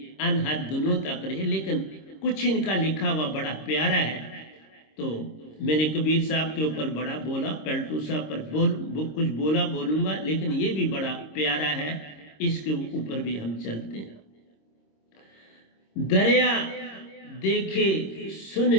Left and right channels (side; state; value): right; late; 26 ms